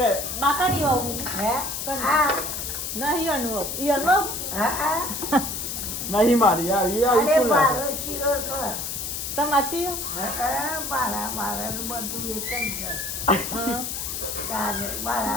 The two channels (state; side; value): noise; left; hiss, 4 dB below the sound